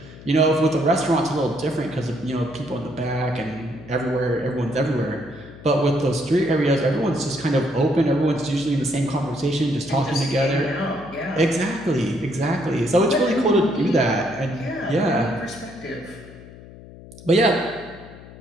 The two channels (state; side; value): noise; left; hum, 18 dB below the sound